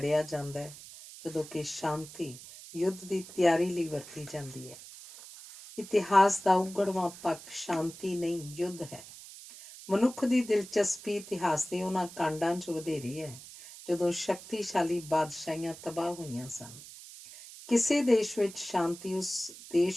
ਜਾਂਦਾ ਹੈ, ਜਦੋਂ ਕਿ ਸ਼ਾਂਤੀ ਯੁੱਧ ਦੀ ਤਿਆਰੀ ਲਈ ਵਰਤੀ ਜਾਂਦੀ ਹੈ। ਇਤਿਹਾਸ ਦਾ ਉਗੜਵਾਂ ਪੱਖ ਸ਼ਾਂਤੀ ਨਹੀਂ, ਯੁੱਧ ਹੈ। ਮਨੁੱਖ ਦੀ ਦਿਲਚਸਪੀ ਇਤਿਹਾਸ ਦੇ ਉਹਨਾਂ ਕਾਂਡਾਂ 'ਚ ਵਧੇਰੀ ਹੈ ਜਦੋਂ ਸ਼ਕਤੀਸ਼ਾਲੀ ਬਾਦਸ਼ਾਹੀਆਂ ਤਬਾਹ ਹੋਈਆਂ ਸਨ। ਕਿਸੇ ਦੇਸ਼ ਵਿੱਚ ਸ਼ਾਂਤੀ ਉਸ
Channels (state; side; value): noise; right; hiss, 16 dB below the sound